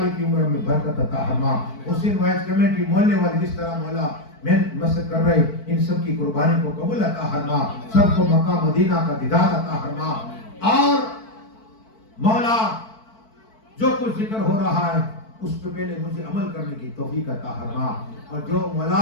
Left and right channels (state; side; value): late; right; 4.5 ms